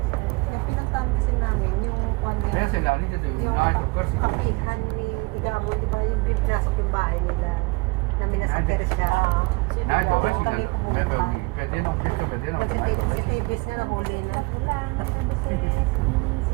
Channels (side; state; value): left; quieter; 25.9 dB